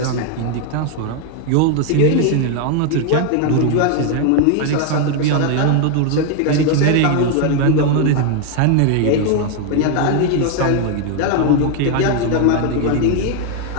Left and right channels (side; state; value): both; different; correlation 0.01